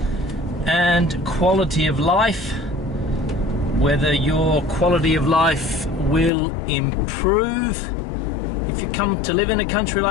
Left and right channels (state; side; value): drops out; right; at 6.3 s